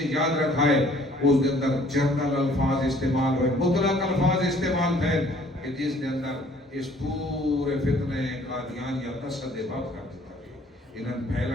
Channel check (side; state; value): both; normal; correlation 0.58